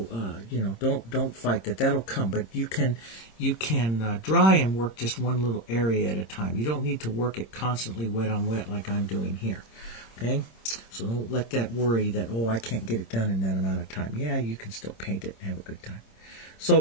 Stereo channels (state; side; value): late; right; 26 ms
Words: don't fight that. That'll come. But you can dry and work just one little area at a time. You don't need to work it constantly wet on wet like I'm doing here. Okay, so don't let that worry that I can't get it done in that amount of time. Yeah, you can still paint it and have a good time.